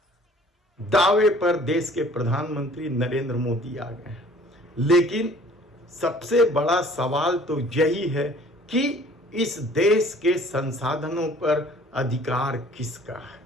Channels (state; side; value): normal; both; correlation 0.53